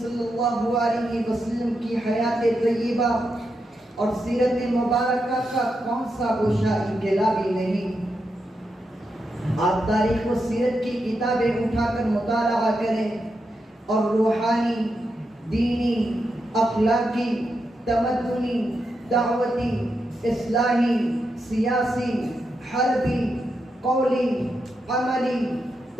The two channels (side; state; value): both; normal; correlation 0.85